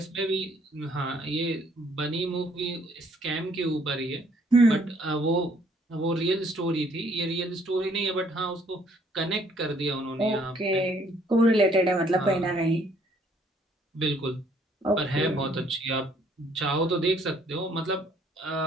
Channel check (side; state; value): both; normal; correlation 0.64